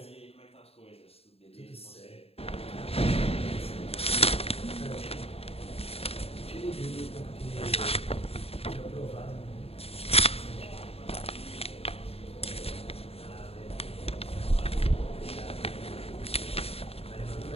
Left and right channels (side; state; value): right; late; 0.29 ms